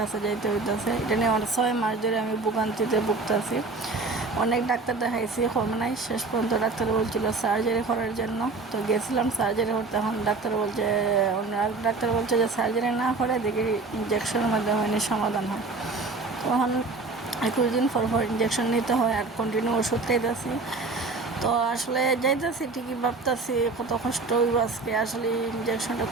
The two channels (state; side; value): quieter; left; 3.8 dB